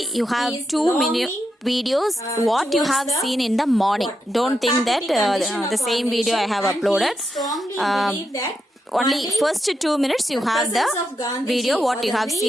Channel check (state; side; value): normal; both; correlation 0.85